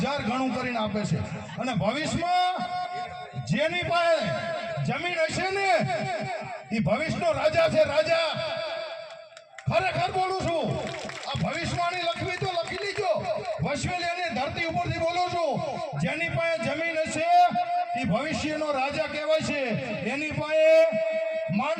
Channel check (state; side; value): identical; both; correlation 1.00